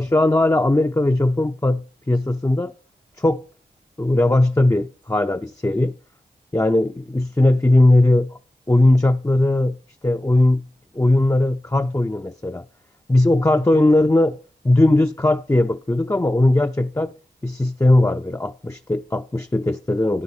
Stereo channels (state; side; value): normal; both; correlation 0.94